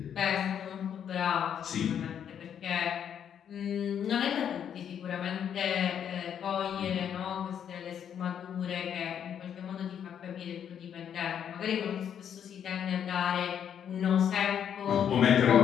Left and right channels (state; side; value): quieter; right; 8.8 dB